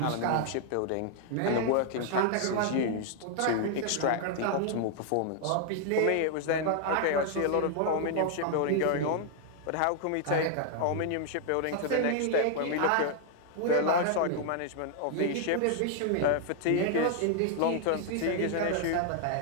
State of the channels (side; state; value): both; different; correlation 0.00